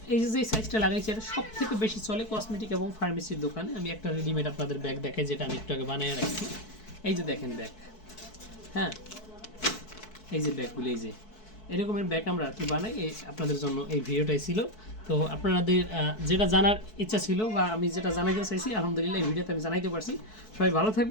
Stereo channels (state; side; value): late; right; 4.6 ms